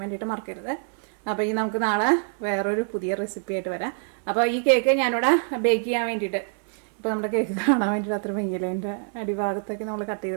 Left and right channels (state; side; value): silent; left; 61 dB below the other